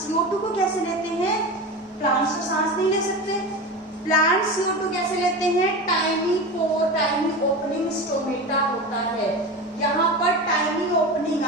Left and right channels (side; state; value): both; normal; correlation 0.26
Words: CO2 को कैसे लेते हैं? प्लांट्स तो सांस नहीं ले सकते। प्लांट्स CO2 कैसे लेते हैं? टाइनी पोर, टाइनी ओपनिंग स्टोमेटा होता है। यहाँ पर टाइनी ओपनिंग